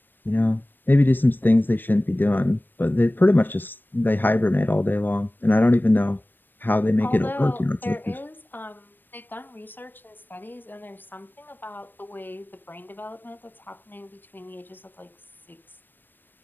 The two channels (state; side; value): late; right; 0.093 ms